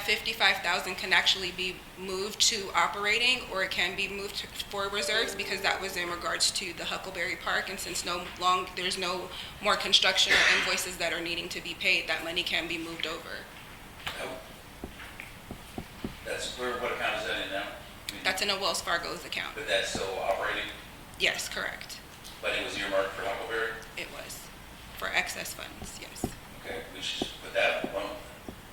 55,000 can actually be moved to operating, or it can be moved for reserves, because that was in regards to the Huckleberry Park. And since there's no more construction or invoices that are needing to be paid, that money can be moved over. That's, what account is that in now? That's in a Wells Fargo's account. But that's still operating, Yes, correct. but it was earmarked for Huckleberry? It was for excess funds, yes. Okay, we should just put that alone.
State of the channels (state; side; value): identical; both; correlation 1.00